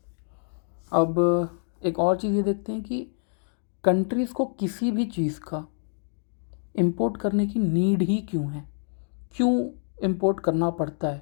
अब एक और चीज़ ये देखते हैं कि कंट्रीज़ को किसी भी चीज़ का इंपोर्ट करने की नीड ही क्यों है, क्यों इंपोर्ट करना पड़ता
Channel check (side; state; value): right; silent; digital silence